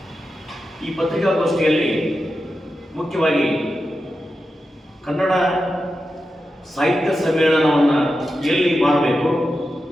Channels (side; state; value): both; normal; correlation 0.90